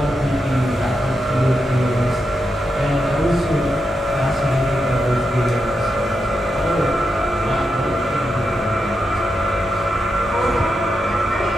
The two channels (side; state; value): both; normal; correlation 0.86